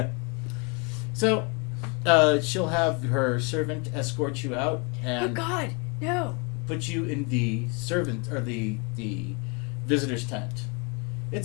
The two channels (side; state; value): right; quieter; 32.5 dB